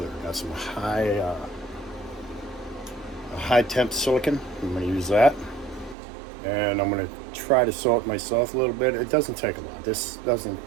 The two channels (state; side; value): drops out; left; at 6.0 s